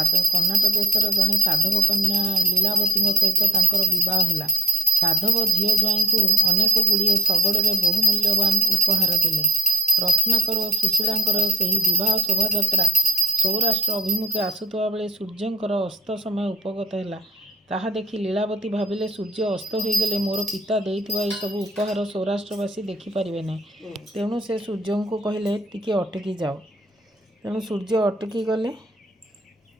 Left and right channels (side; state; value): both; normal; correlation 0.46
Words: କର୍ଣ୍ଣାଟ ଦେଶର ଜଣେ ସାଧବ କନ୍ୟା ଲୀଳାବତୀଙ୍କ ସହିତ ତାଙ୍କର ବିବାହ ହେଲା। ସାଧବ ଝିଅ ଜ୍ୱାଇଁଙ୍କୁ ଅନେକ ଗୁଡ଼ିଏ ଶଗଡ଼ରେ ବହୁ ମୂଲ୍ୟବାନ ଉପହାର ଦେଲେ। ରତ୍ନାକର ଓ ସୁଶୀଳାଙ୍କର ସେହି ବିବାହ ଶୋଭାଯାତ୍ରା ସୌରାଷ୍ଟ୍ର ଅଭିମୁଖେ ଆସୁଥିବା ବେଳେ ସୂର୍ଯ୍ୟଙ୍କର ଅସ୍ତ ସମୟ ଉପଗତ ହେଲା। ତାହା ଦେଖି ଲୀଳାବତୀ ଭାବିଲେ, ସୂର୍ଯ୍ୟ ଅସ୍ତ ହୋଇଗଲେ ମୋର ପିତା ଦେଇଥିବା ଏସବୁ ଉପହାର ସୌରାଷ୍ଟ୍ରବାସୀ ଦେଖିପାରିବେ ନାହିଁ। ତେଣୁ ସେ ସୂର୍ଯ୍ୟଙ୍କୁ କହିଲେ, ଟିକେ ଅଟକି ଯାଅ। ତେଣୁ ସୂର୍ଯ୍ୟ ଅଟକି ଗଲେ।